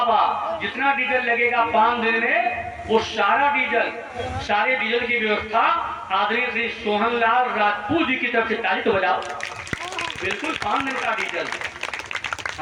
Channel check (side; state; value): both; identical; correlation 1.00